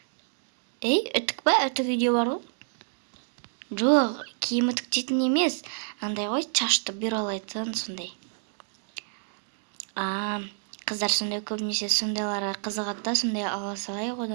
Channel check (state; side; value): silent; left; digital silence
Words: Үтік па? Үтік үйде бар ғой. Жоқ, киім үтіктейтін емес, андай ғой, шашты бюролайтын сондай. Қыздар сондай көбінесе сондайларға қызығады да, сондай ала салайық